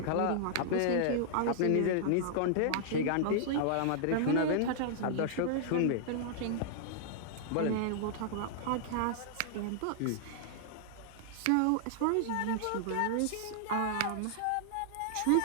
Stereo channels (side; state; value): both; different; correlation -0.01